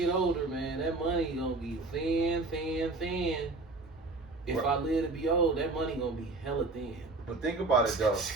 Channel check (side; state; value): left; quieter; 3.3 dB